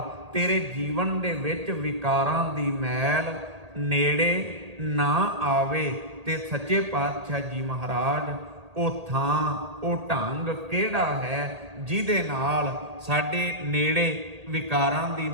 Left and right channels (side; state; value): left; late; 1.8 ms